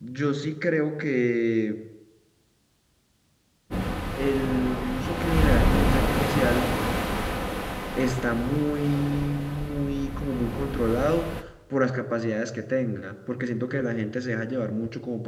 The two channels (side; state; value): both; identical; correlation 1.00